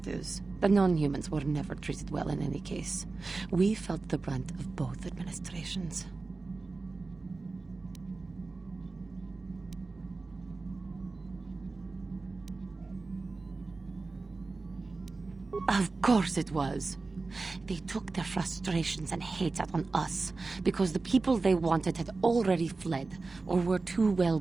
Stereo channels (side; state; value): left; quieter; 3.7 dB